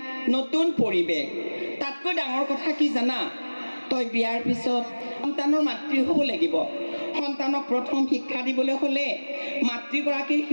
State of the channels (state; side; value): inverted; both; correlation -1.00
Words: নতুন পৰিৱেশ তাতকৈ ডাঙৰ কথা কি জানা তই বিয়াৰ পিছত সন্তানৰ মাতৃ হ'ব লাগিব সন্তানক প্ৰথম শিক্ষা দিবলৈ হ'লে মাতৃগৰাকীৰ